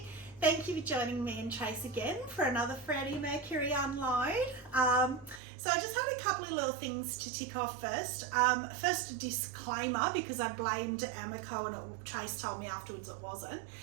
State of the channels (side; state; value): left; drops out; at 5.4 s